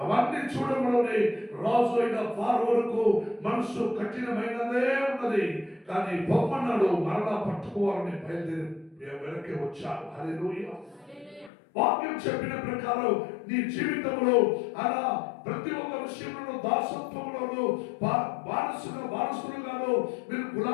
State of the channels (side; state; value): right; drops out; at 11.5 s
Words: అవన్నీ చూడడంలోనే రాజు అయిన ఫారోకు మనసు కఠినమైనదే ఉన్నది. కానీ పొమ్మన్నాడు, మరలా పట్టుకోవాలని బయలుదేరి వెనక్కి వచ్చాడు. హల్లెలూయా. వాక్యం చెప్పిన ప్రకారం నీ జీవితంలో అలా ప్రతి ఒక్క విషయంలో దాసత్వంలోను వారసులుగాను మీరు